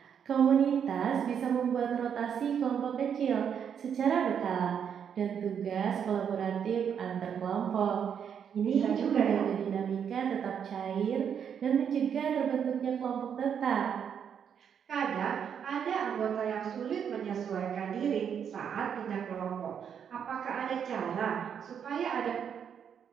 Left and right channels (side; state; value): left; quieter; 7.9 dB